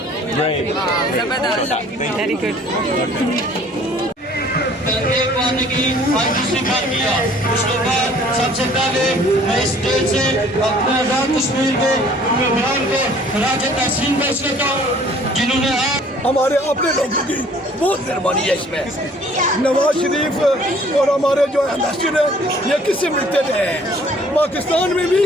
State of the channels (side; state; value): both; normal; correlation 0.55